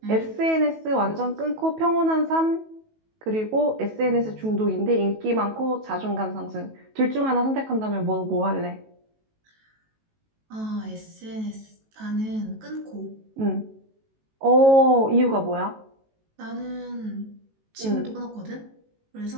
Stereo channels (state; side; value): late; left; 18 ms